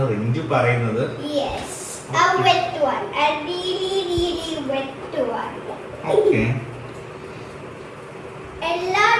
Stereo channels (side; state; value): both; identical; correlation 1.00